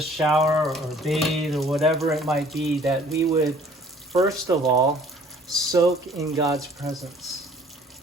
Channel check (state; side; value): normal; both; correlation 0.55